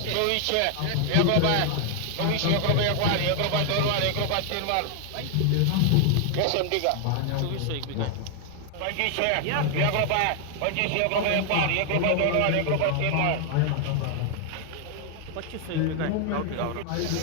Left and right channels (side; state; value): both; different; correlation 0.00